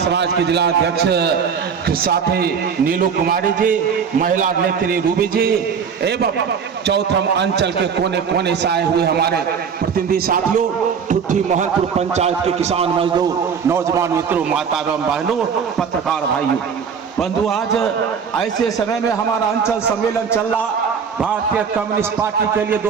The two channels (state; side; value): quieter; left; 6.6 dB